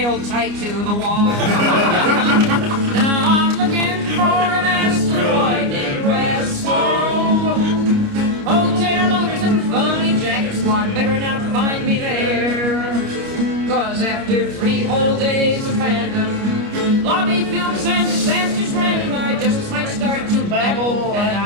tight to the wall. Now I'm looking for an asteroid named Rest Home. Hotel owners and funny jacket squad better not find me there, 'cause after 3 whole days of fandom, lobby films and disasters random, I just might start to babble and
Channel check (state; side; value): late; left; 29 ms